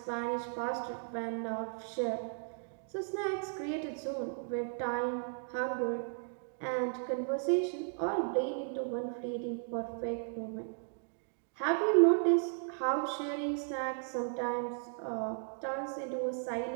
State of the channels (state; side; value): silent; left; digital silence